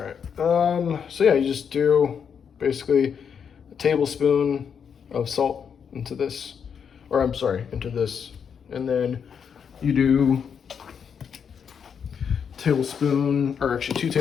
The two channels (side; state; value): right; quieter; 7.1 dB